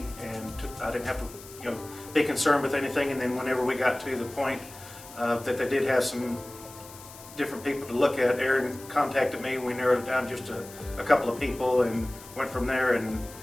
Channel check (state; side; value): noise; left; hiss, 18 dB below the sound